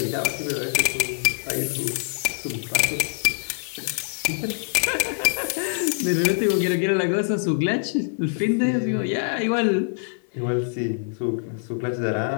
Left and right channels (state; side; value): silent; right; 61 dB below the other